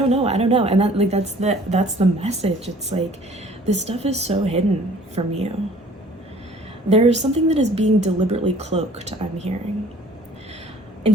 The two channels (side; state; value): both; normal; correlation 0.52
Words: that like that's the message. It's like this stuff is so hidden from you. There's something that is being deliberately cloaked, I'm hearing. In